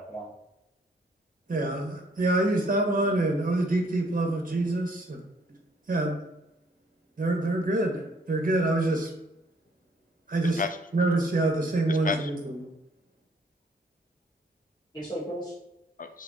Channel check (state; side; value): normal; both; correlation 0.64